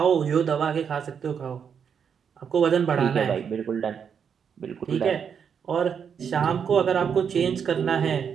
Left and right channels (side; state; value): left; quieter; 7.2 dB